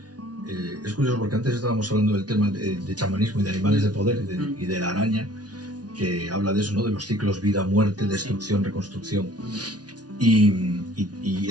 Es curioso porque antes estábamos hablando del tema de chamanismo y de animales de poder y de la araña, que habla de eso, ¿no? De los ciclos vida-muerte, destrucción, reconstrucción. Y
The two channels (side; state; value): left; late; 0.69 ms